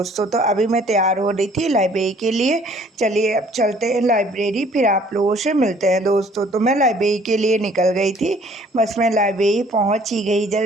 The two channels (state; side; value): normal; both; correlation 0.57